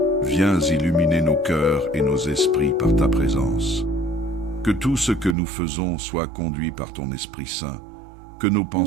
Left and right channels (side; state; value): left; drops out; at 5.4 s